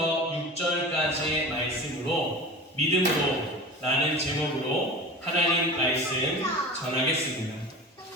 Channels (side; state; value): both; normal; correlation 0.34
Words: 6절까지의 말씀으로 믿음으로 라는 제목으로 하나님 말씀 전하겠습니다.